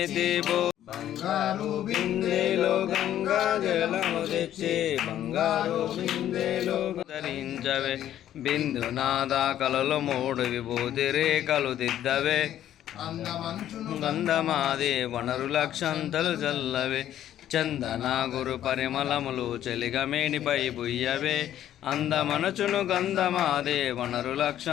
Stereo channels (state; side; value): quieter; right; 11.6 dB